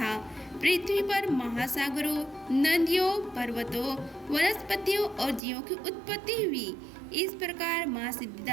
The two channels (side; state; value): left; drops out; at 5.4 s